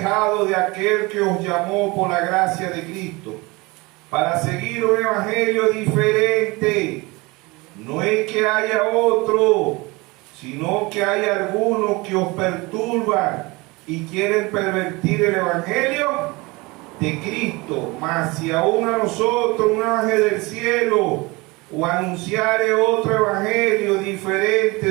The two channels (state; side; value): quieter; left; 24.2 dB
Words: de aquel que os llamó por la gracia de Cristo, para seguir un evangelio diferente. No es que haya otro, sino que hay algunos que os perturban y quieren pervertir el evangelio de Cristo. Mas si aún a nosotros un ángel del cielo o anunciare otro evangelio diferente